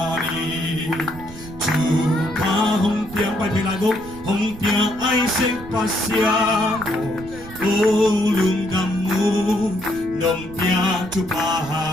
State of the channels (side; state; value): right; noise; rumble, 16 dB below the sound